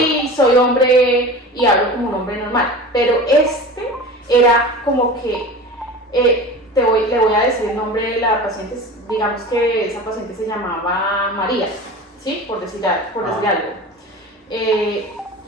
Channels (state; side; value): normal; both; correlation 0.34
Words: y soy hombre y hablo como un hombre normal, pero este era como que le voy a decir el nombre de la paciente, digamos que esa paciente se llamaba María, ¿sí? por decir algo.